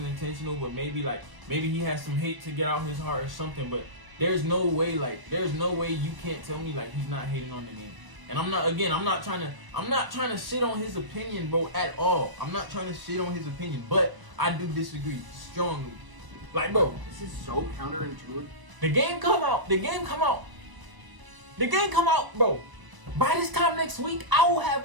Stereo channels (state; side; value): late; left; 1.0 ms